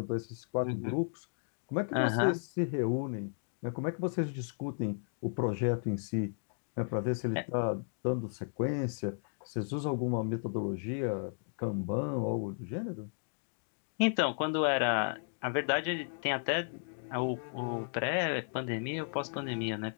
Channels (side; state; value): right; silent; digital silence